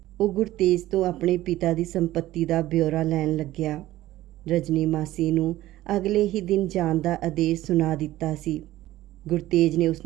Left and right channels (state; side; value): quieter; left; 15.5 dB